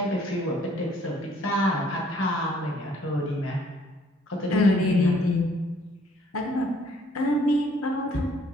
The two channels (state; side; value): normal; both; correlation 0.62